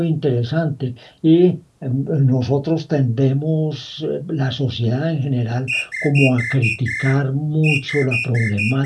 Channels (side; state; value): both; identical; correlation 1.00